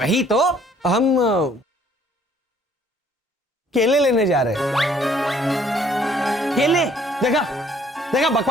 तो, हम केले लेने जा रहे हैं। केले? देखा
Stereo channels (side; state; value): both; normal; correlation 0.61